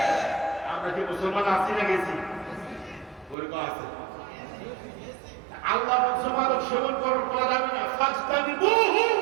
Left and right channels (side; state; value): left; drops out; at 3.4 s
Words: আমরা কি মুসলমান আছি না গেছি? ওরকম আছে। আল্লাহ বলছে মাদক সেবন করা যাবে না, ফাজতানিবুহু,